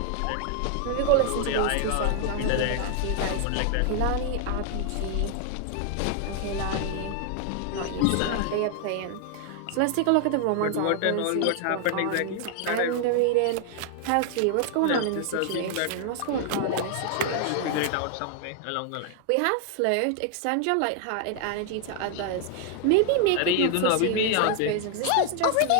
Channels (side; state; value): both; different; correlation 0.00